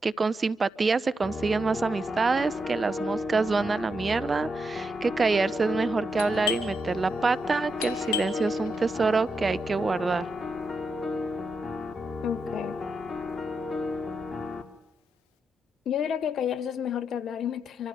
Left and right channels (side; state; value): both; normal; correlation 0.84